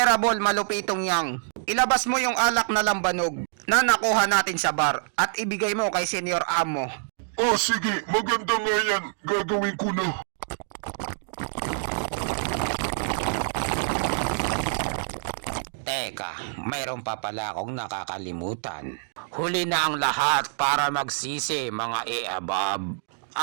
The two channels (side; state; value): left; silent; digital silence